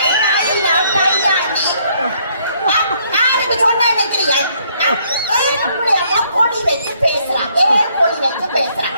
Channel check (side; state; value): both; inverted; correlation -0.67